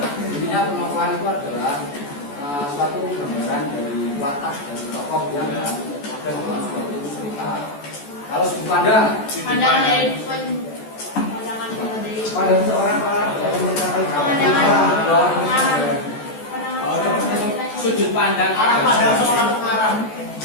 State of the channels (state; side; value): late; right; 14 ms